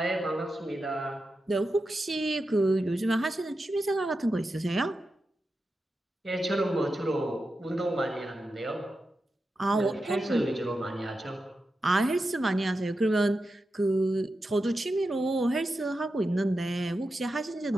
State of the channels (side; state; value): both; normal; correlation 0.90